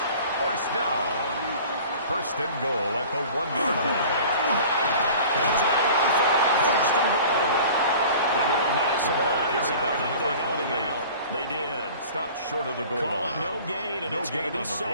first down. First and goal at the 1-yard line. They'll try to run for it on first and goal. Into a massive bucket, and I think they held him out. They did. Stopped short of the goal Call line. it no gain, and No it's going to gain be on the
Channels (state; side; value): inverted; both; correlation -0.43